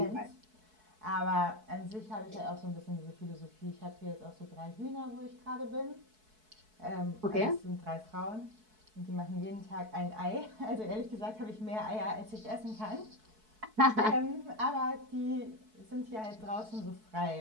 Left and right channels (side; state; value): left; late; 4.6 ms